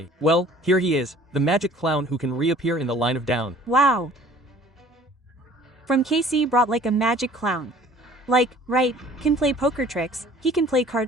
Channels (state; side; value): normal; both; correlation 0.51